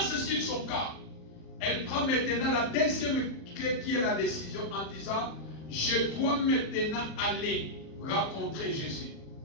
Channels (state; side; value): late; right; 38 ms